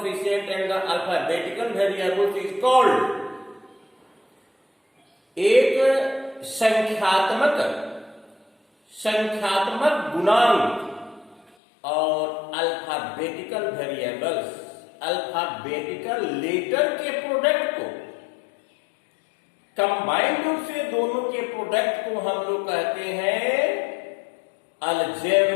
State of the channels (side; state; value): right; drops out; at 11.5 s